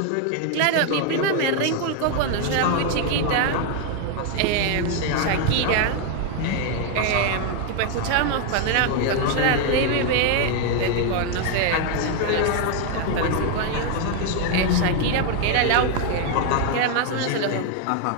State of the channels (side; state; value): both; different; correlation 0.01